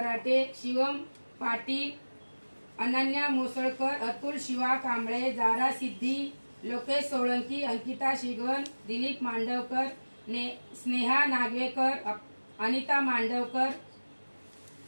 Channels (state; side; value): inverted; both; correlation -1.00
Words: शिवम पाटील, अनन्या मोसळकर, अतुल शिवा कांबळे, जारा सिद्धी, लोकेश सोळंकी, अंकिता शिगवन, दिलीप मांडवकर, स्नेहा नागवेकर, अनिता मांडवकर,